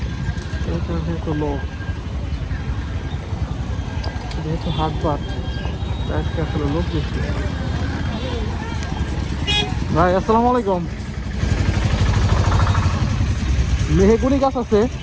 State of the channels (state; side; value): identical; both; correlation 1.00